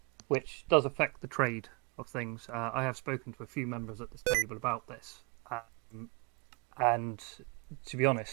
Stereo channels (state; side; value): quieter; left; 31.5 dB